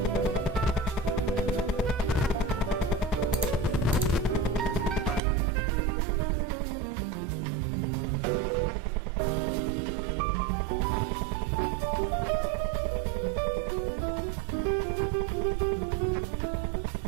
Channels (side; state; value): left; drops out; at 5.2 s